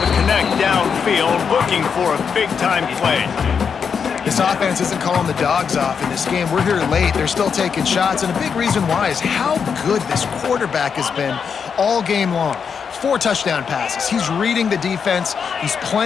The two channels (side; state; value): right; quieter; 6.5 dB